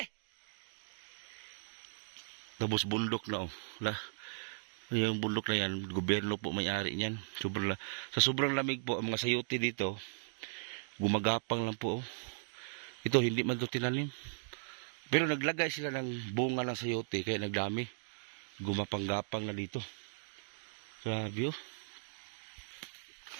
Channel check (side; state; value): left; silent; digital silence